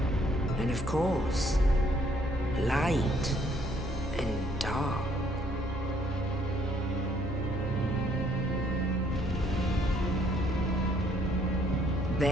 and of course, light and dark.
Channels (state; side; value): normal; both; correlation 0.65